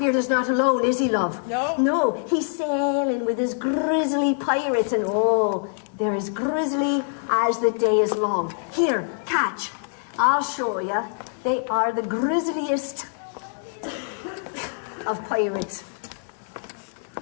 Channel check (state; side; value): silent; right; 62 dB below the other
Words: is not alone, is he, love? No. No, he's sailing with his grizzly pirates, and oh, they're as grizzly as the day is long. Here, catch. I'll show you. They are the grisliest of pirates.